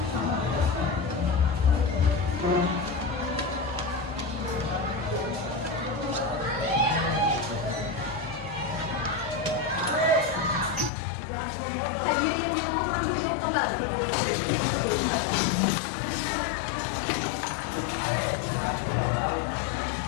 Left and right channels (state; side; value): drops out; right; at 10.9 s